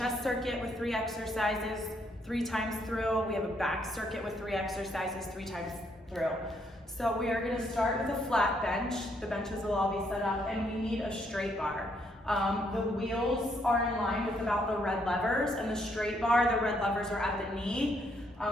circuit with 3 exercises 3 times through. We have a back circuit with 3 exercises 3 times through. So we are gonna start with a flat bench. The benches will all be set up and we need a straight bar. The wheels are in line with about the red levers, and the straight bar, the red levers are at the knee.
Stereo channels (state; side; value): normal; both; correlation 0.72